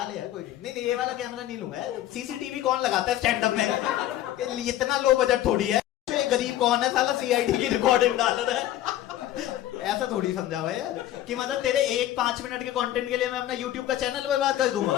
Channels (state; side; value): quieter; right; 13.3 dB